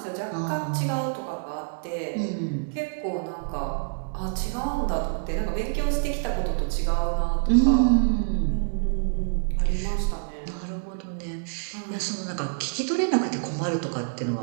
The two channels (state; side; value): silent; left; digital silence